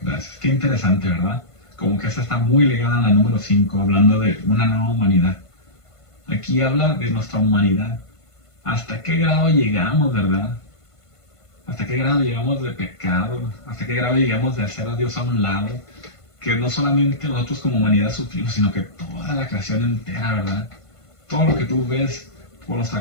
Gracias. Qué interesante, ¿verdad? Como que esta está muy ligada a la número 5, hablando de una nueva humanidad. Aquí habla de nuestra humanidad. ¿Hasta qué grado llegamos, verdad? ¿Hasta qué grado llegamos de pecado? ¿Hasta qué grado llegamos de hacer a Dios a un lado? Que no solamente nosotros como humanidad sufrimos, sino que toda la creación entera, ¿verdad? Todo lo que tú ves por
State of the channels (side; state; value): right; late; 1.5 ms